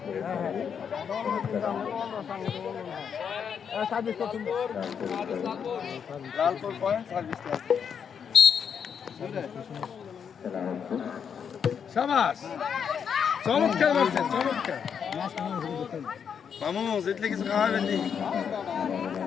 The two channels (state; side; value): quieter; right; 7.3 dB